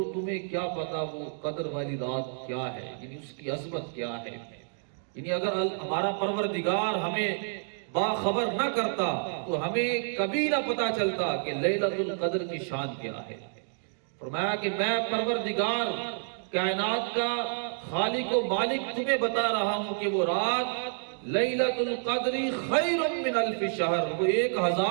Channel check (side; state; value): left; silent; digital silence